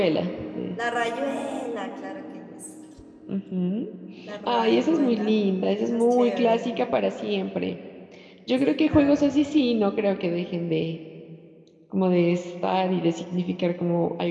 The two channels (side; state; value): both; identical; correlation 1.00